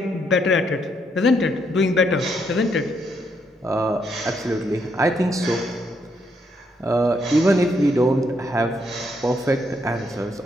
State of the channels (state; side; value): normal; both; correlation 0.75